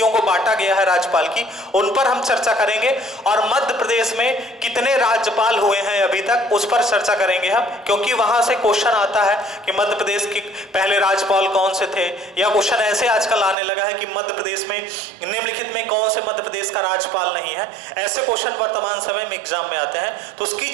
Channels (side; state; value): left; drops out; at 13.6 s